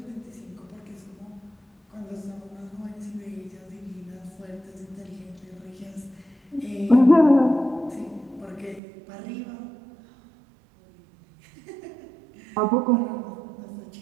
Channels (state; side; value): drops out; left; at 8.8 s